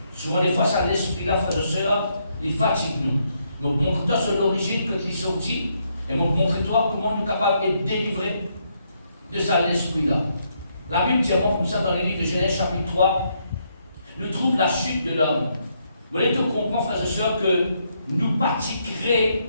Souvent des fois ça l'esprit-là, frères et sœurs, il fatigue nous. Donc montre-toi sur l'origine que tu es sorti et montre-toi comment nous sommes capables d'être délivrés de ça l'esprit-là. La Bible dit comme ça dans le livre de Genèse chapitre 3, nous trouve la chute de l'homme. Vous allez te comprendre, frères et sœurs, que nous pratiquerons,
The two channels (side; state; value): both; inverted; correlation -0.76